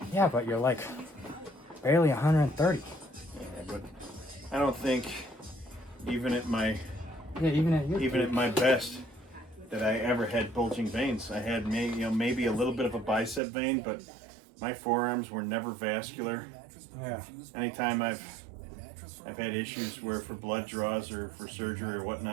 yeah, but you're like barely 130. Yeah, but I don't think even at my Even at my best that I ever had bulging veins. I had maybe a little bit of a bicep vein, but my forearms were never vascular. yeah. Anytime I've had issues where for blood draws or for surgery or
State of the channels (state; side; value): drops out; left; at 13.4 s